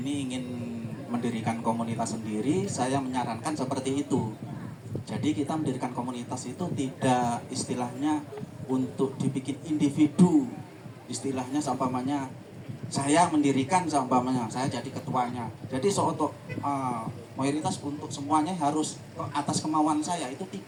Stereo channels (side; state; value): both; identical; correlation 1.00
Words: ingin mendirikan komunitas sendiri, saya menyarankan seperti itu. Jadi kita mendirikan komunitas itu tidak istilahnya untuk dibikin individu. Istilahnya seumpamanya saya mendirikan, seumpamanya saya jadi ketuanya. Jadi untuk mayoritas untuk semuanya harus atas kemauan saya, itu